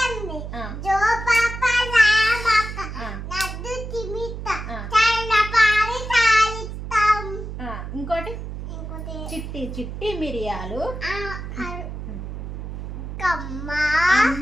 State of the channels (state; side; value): noise; right; hum, 8 dB below the sound